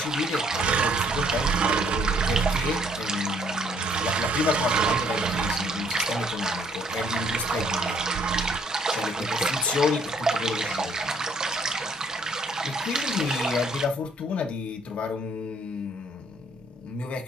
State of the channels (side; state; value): both; normal; correlation 0.65